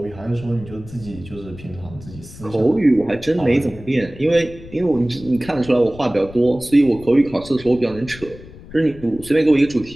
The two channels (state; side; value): noise; left; rumble, 17 dB below the sound